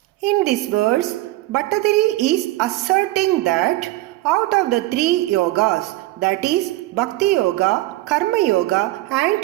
In this verse, Bhattadiri is asserting that out of the 3 yogas, that is Bhakti Yoga, Karma Yoga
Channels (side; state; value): left; quieter; 17.8 dB